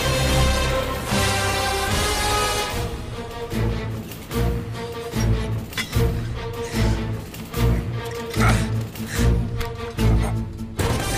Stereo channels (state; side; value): identical; both; correlation 1.00